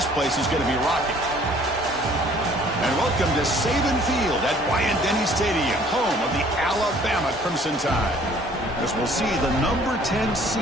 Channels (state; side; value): normal; both; correlation 0.56